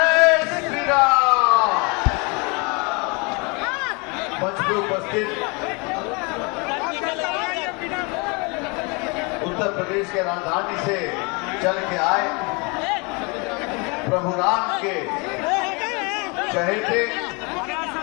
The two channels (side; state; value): right; quieter; 30.3 dB